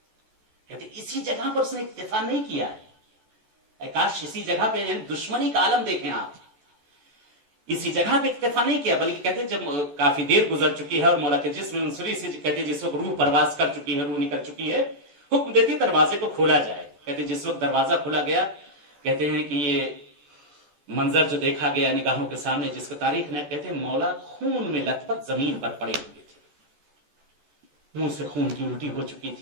कहते इसी जगह पर उसने इत्तेफा नहीं किया है, काश इसी जगह पे दुश्मनी का आलम देखें आप, इसी जगह पे इत्तेफा नहीं किया, बल्कि कहते जब काफी देर गुजर चुकी है और मौला के जिस्म मुंसरी से कहते जिस वक्त रूह परवास कर चुकी है, रूह निकल चुकी है, हुक्म देती दरवाजे को खोला जाए। कहते जिस वक्त दरवाजा खोला गया, कहते हैं कि ये मंजर जो देखा गया निगाहों के सामने, जिसको तारीख ने कहते मौला खून में लथपथ जमीन पर पड़े हुए थे, मुंह से खून की उल्टी हो चुकी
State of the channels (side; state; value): left; late; 14 ms